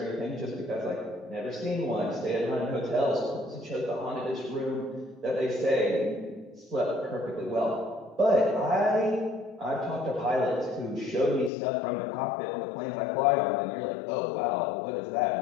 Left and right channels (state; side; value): drops out; right; at 11.5 s